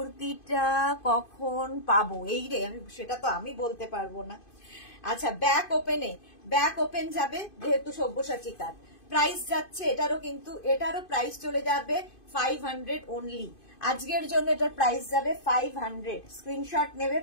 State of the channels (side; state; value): right; late; 2.5 ms